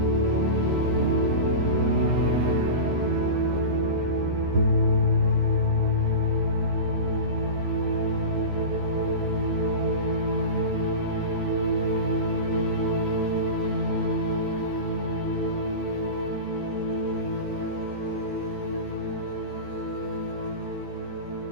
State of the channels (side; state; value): left; late; 14 ms